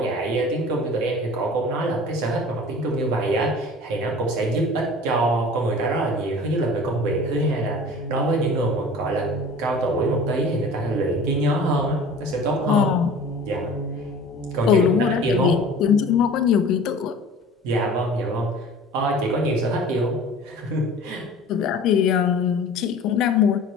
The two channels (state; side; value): normal; both; correlation 0.42